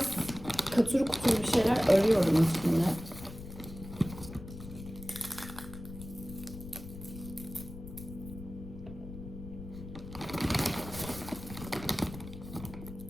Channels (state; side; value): noise; left; rumble, 12 dB below the sound